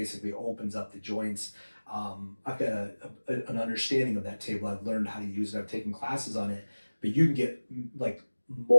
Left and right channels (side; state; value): both; inverted; correlation -1.00